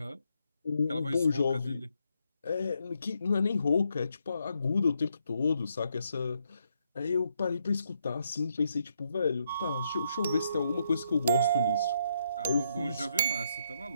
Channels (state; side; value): inverted; both; correlation -0.77